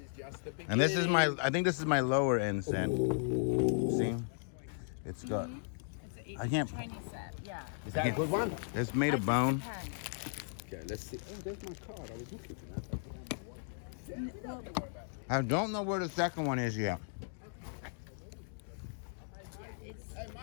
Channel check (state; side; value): silent; right; digital silence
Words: is just the beginning. And this is I think this is my lower end set. See? It's got, I can't, Chinese set, yeah. Is that a good one? it's made of bone. Okay, let's see. Oh, there's my card. I was looking for that. I don't know where the second one is yet. Hey,